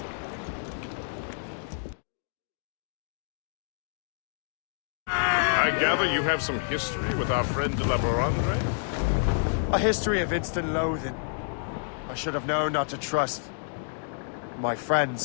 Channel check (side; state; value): right; silent; digital silence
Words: I gather you have some history with our friend de la Barandre? A history of instant loathing. I should have known not to trust my